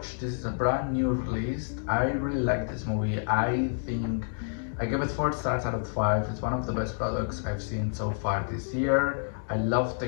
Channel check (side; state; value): right; silent; digital silence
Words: This is a brand new release. I really like this movie. I think I give it 4 stars out of 5. It's one of the best products I've seen so far this year. I love